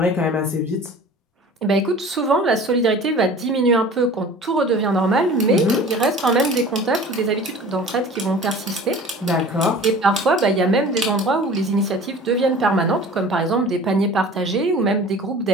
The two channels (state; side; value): normal; both; correlation 0.43